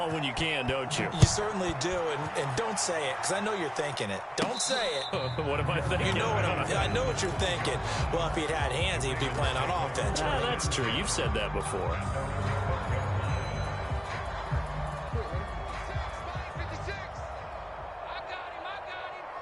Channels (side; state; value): both; identical; correlation 1.00